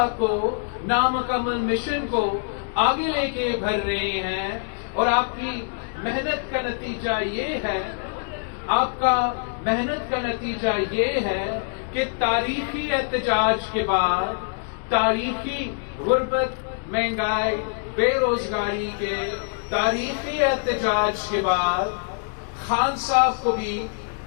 کو، نامکمل مشن کو آگے لے کے بڑھ رہے ہیں. اور آپ کی محنت کا نتیجہ یہ ہے، کہ تاریخی احتجاج کے بعد، تاریخی غربت، مہنگائی، بے روزگاری کے تاریخی احتجاج کے بعد خان صاحب کو بھی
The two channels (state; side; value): silent; right; digital silence